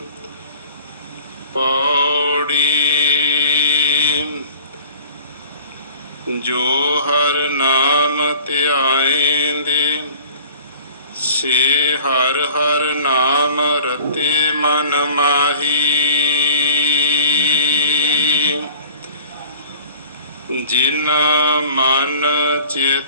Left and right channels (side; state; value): both; inverted; correlation -0.47